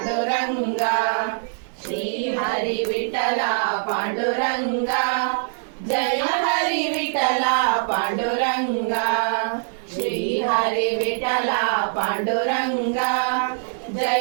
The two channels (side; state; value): left; silent; digital silence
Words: ಶ್ರೀ ಹರಿ ವಿಠಲ ಪಾಂಡುರಂಗ, ಜಯ ಹರಿ ವಿಠಲ ಪಾಂಡುರಂಗ, ಶ್ರೀ ಹರಿ ವಿಠಲ ಪಾಂಡುರಂಗ,